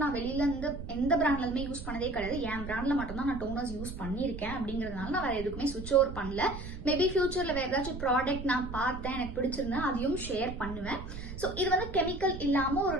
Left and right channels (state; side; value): noise; right; rumble, 10 dB below the sound